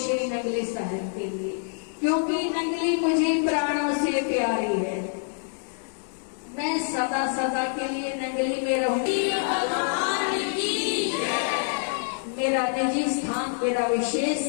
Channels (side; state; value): right; silent; digital silence